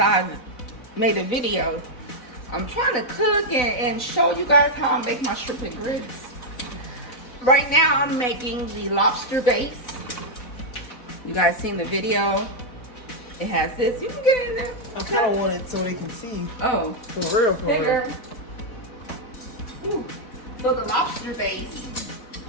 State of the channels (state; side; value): late; right; 4.0 ms